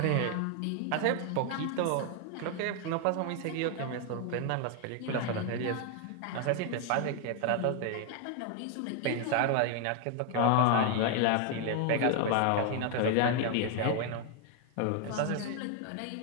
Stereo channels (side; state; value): both; different; correlation 0.01